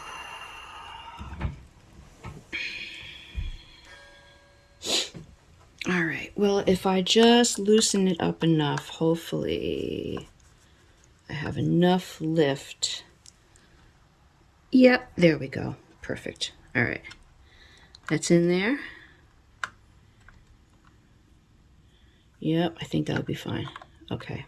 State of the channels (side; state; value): both; identical; correlation 1.00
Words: All right, well, if I just loosen it up enough, hopefully I have enough lift. Yep, there we go. Perfect. All right, that's in there. Yep, I think that'll be fine. Okay.